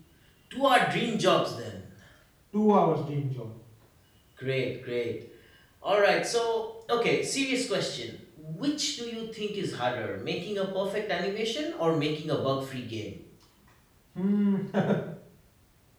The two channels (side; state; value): both; identical; correlation 1.00